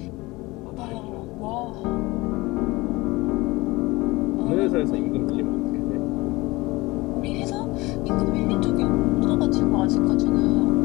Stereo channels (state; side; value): quieter; right; 21.6 dB